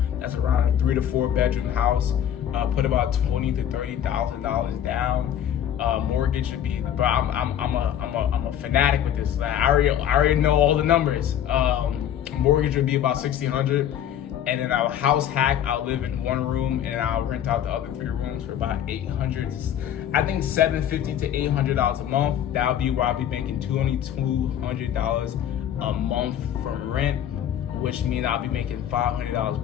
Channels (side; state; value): right; quieter; 10.2 dB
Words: That's around a 3 to 4 bedroom house. Put about $20,000 to $30,000 down. Mortgage should be, but I'm a fanatic with this. I already know all the numbers. Mortgage would be about $1,600, and then I'll house hack. I'll live in one room, and I'll rent out the other 3 rooms for about $800. I think $750 to $800 a month. That'll be where I'll be making $200 a month from rent, which means I'll be making $500